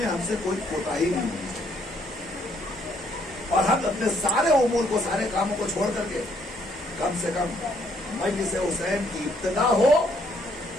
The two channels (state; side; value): normal; both; correlation 0.68